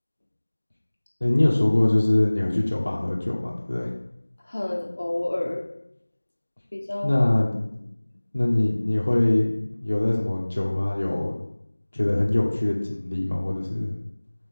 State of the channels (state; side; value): inverted; both; correlation -1.00